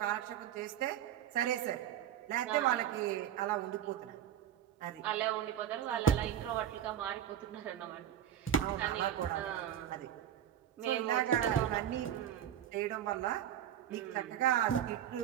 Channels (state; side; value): quieter; left; 10.4 dB